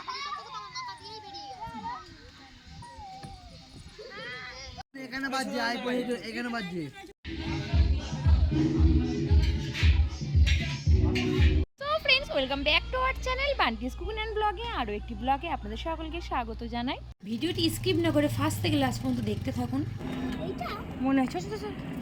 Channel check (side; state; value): both; identical; correlation 1.00